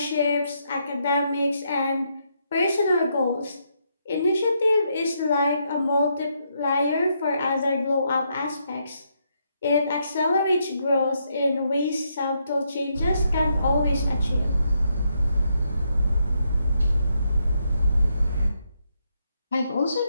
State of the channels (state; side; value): inverted; both; correlation -0.78